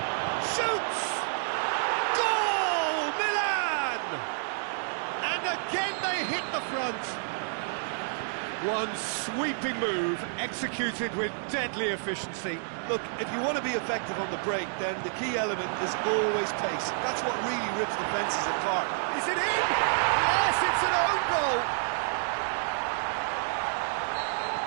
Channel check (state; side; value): silent; left; digital silence